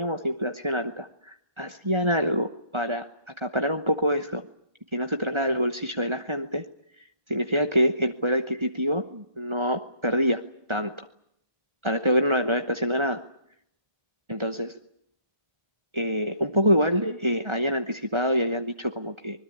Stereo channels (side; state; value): left; late; 1.4 ms